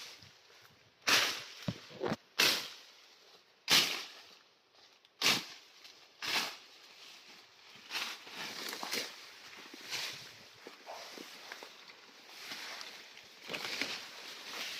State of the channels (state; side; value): identical; both; correlation 1.00